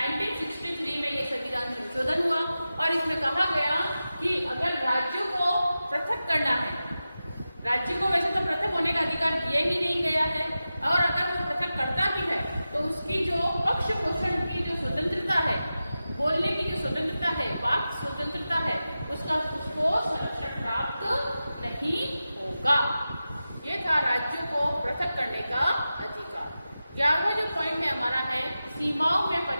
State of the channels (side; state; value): both; inverted; correlation -0.93